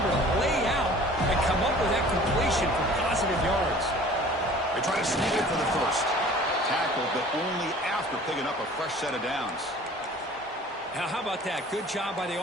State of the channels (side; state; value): both; normal; correlation 0.47